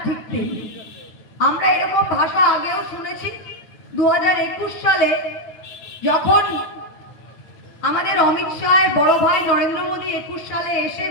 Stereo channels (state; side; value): late; right; 9.3 ms